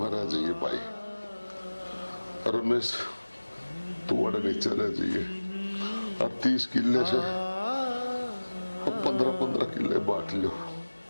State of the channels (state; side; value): inverted; both; correlation -1.00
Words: रह जाइए भाई रमेश तू अड़े नीचे रह जाइए और 30 किले से 15-15 किले बांट लो